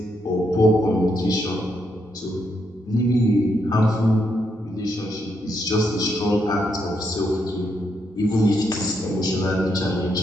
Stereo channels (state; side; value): normal; both; correlation 0.78